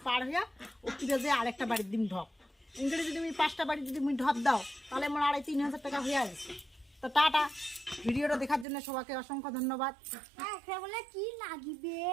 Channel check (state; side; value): drops out; left; at 8.7 s